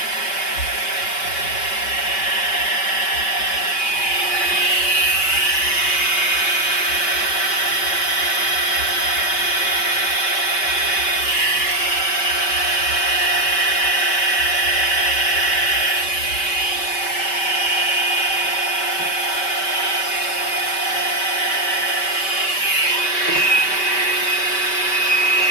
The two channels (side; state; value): right; late; 5.2 ms